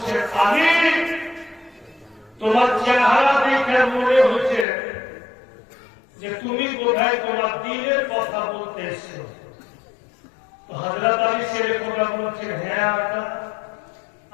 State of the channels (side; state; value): right; drops out; at 4.7 s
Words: আলী তোমার চেহারা দেখে মনে হচ্ছে যে তুমি বোধহয় তোমার দিনের কথা বলতে এসছো। তো হযরত আলী ছেলে কথা বলছেন, হ্যাঁ আকা,